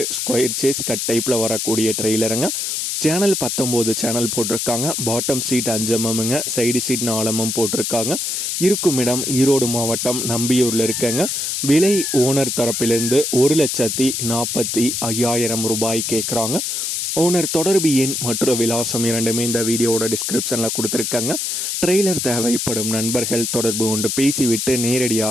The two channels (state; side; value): noise; left; hiss, 1 dB below the sound